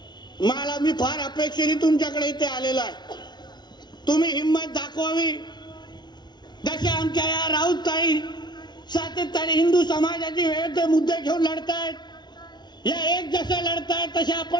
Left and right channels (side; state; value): right; late; 0.20 ms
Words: मला मी फार अपेक्षेने तुमच्याकडे इथे आलेलो आहे. तुम्ही हिंमत दाखवावी. जसे आमच्या या राऊतताई सातत्याने हिंदू समाजाची विविध मुद्दे घेऊन लढतायत, या एक जसे लढतायत तसे